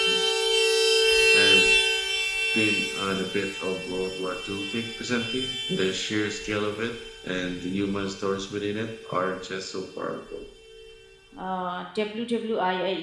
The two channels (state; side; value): identical; both; correlation 1.00